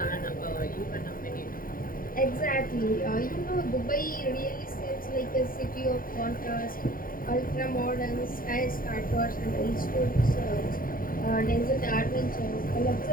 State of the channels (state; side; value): late; right; 0.41 ms